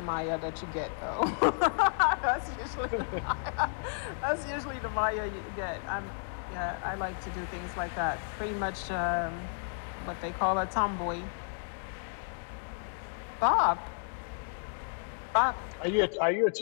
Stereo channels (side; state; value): right; silent; digital silence